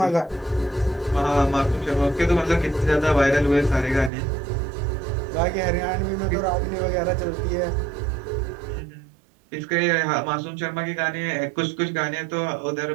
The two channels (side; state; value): left; drops out; at 4.1 s